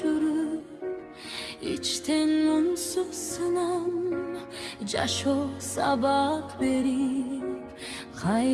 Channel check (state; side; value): identical; both; correlation 1.00